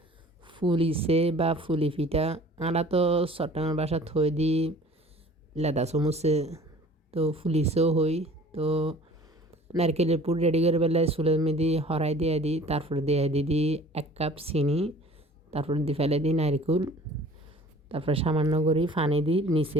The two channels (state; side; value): normal; both; correlation 0.48